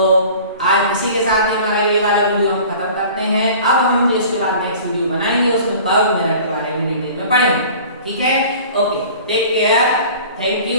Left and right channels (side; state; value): both; inverted; correlation -0.44